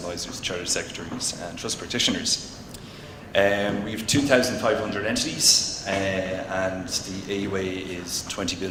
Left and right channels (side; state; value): both; identical; correlation 1.00